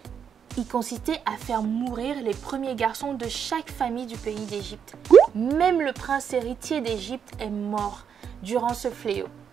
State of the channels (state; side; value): quieter; left; 7.6 dB